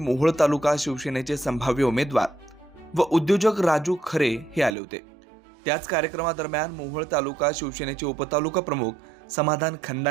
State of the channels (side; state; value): left; drops out; at 4.8 s